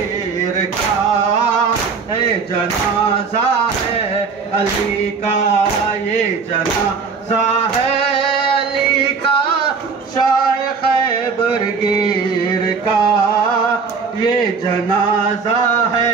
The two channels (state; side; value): quieter; left; 5.2 dB